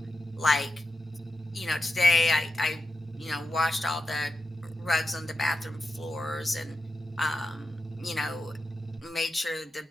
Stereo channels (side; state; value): both; normal; correlation 0.89